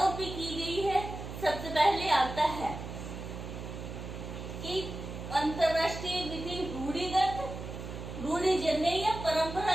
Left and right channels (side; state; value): right; noise; hum, 9 dB below the sound